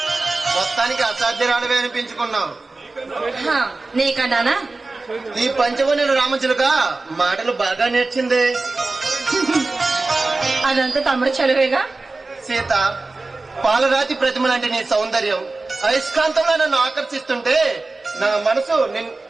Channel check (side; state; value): left; quieter; 3.4 dB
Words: మొత్తానికి అసాధ్యరాడవే అనిపించుకున్నావు. నీకన్నానా? ఈ పంచవనులు రామచిలుక మాటలు బాగా నేర్చింది. అదంతా తమ్ముడు చదివేగా. సీత, పాలరాతి ప్రతిమ లాంటి నీ సౌందర్యం అయస్కాంతంలో నన్ను ఆకర్షిస్తుంటే నా మనసు నిన్ను